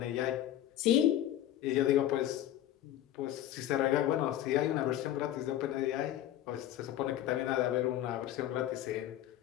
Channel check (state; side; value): quieter; right; 12.5 dB